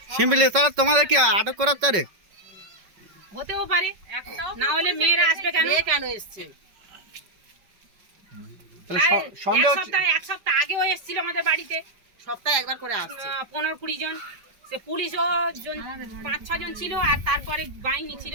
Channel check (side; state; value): left; late; 5.3 ms